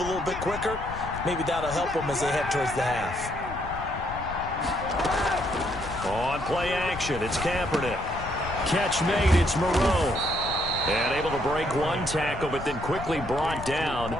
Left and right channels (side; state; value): left; noise; rumble, 10 dB below the sound